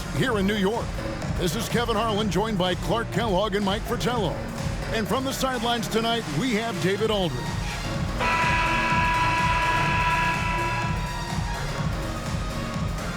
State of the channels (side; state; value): both; identical; correlation 1.00